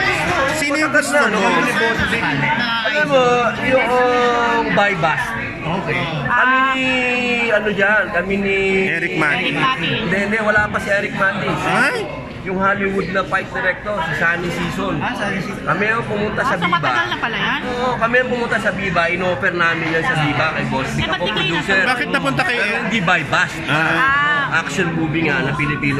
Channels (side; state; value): both; identical; correlation 1.00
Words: Sino yung gusto mo? Alam mo, yung Baybas. Okay. Kami ni Eric Mati. Hindi, wala pa si Eric Mati. Ay? Yung Hollywood na fight director, si Sunny Season. Sunny Season. Kami ang pumunta sa So Viva. matagal na pala yan? Oo, kami ang pumunta sa Viva. In-offer namin yan sa Viva kay Boss. ba't Ako di kayo producer. nasa- Bakit napunta kay Pero hindi Baybas. Action movie nga na Filipino